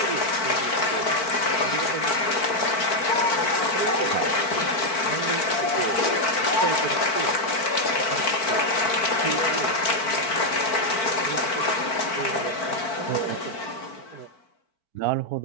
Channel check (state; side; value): late; right; 4.5 ms